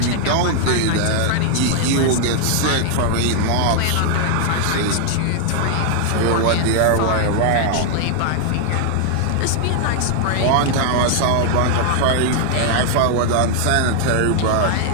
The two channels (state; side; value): different; both; correlation 0.00